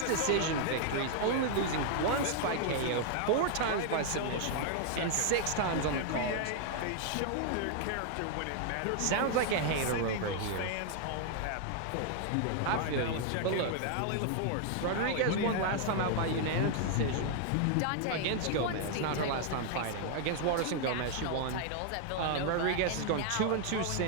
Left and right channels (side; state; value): both; different; correlation 0.00